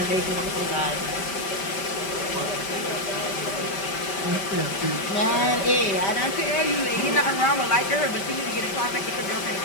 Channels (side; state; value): right; late; 5.1 ms